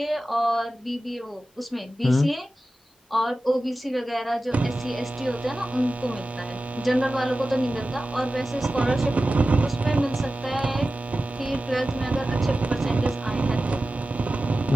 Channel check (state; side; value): normal; both; correlation 0.94